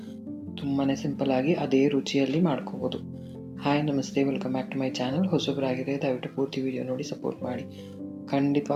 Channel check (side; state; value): both; identical; correlation 1.00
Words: ತುಂಬಾ ಸಿಂಪಲ್ಲಾಗಿ ಅದೇ ರುಚಿಯಲ್ಲಿ ಮಾಡ್ಕೋಬೋದು. ಹಾಯ್ ನಮಸ್ತೆ, welcome back to my channel. ಹೊಸಬರಾಗಿದೆ ದಯವಿಟ್ಟು ಪೂರ್ತಿ ವಿಡಿಯೋ ನೋಡಿ ಸಪೋರ್ಟ್ ಮಾಡಿ.